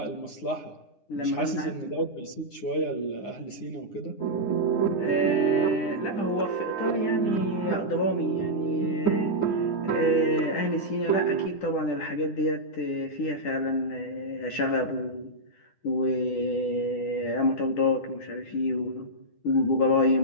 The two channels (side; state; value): right; late; 9.8 ms